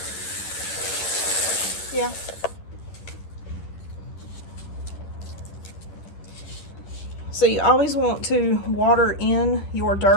Yeah. So you always want to water in your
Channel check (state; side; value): late; right; 11 ms